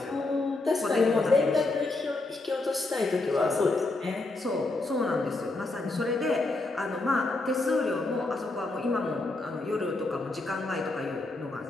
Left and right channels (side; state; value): right; quieter; 3.1 dB